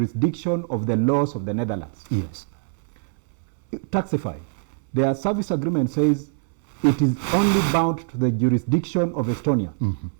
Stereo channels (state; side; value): silent; left; 63 dB below the other